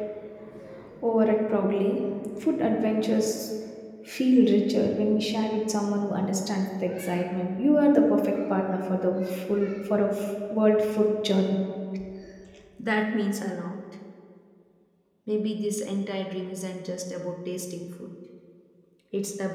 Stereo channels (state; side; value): identical; both; correlation 1.00